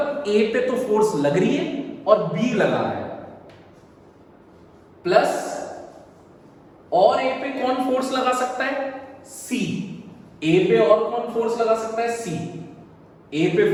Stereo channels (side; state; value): both; identical; correlation 1.00